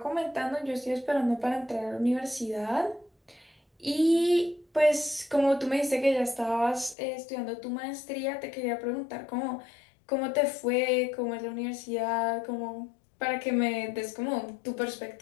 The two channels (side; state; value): right; drops out; at 7.0 s